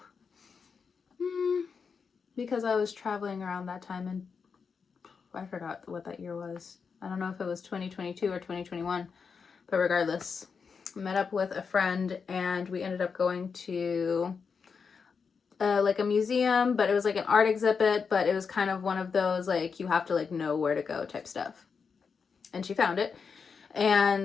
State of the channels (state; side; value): quieter; right; 5.7 dB